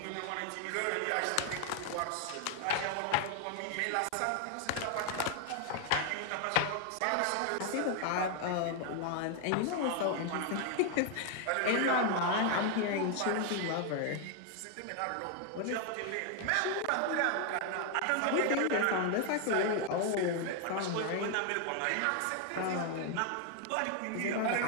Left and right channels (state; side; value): different; both; correlation 0.00